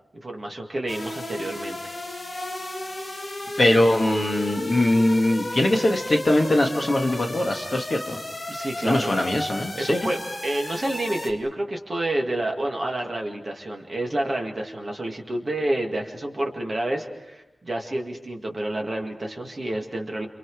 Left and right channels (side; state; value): both; normal; correlation 0.95